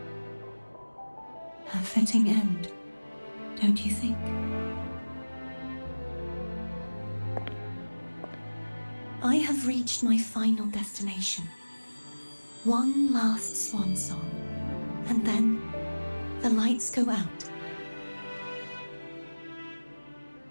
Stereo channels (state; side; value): inverted; both; correlation -1.00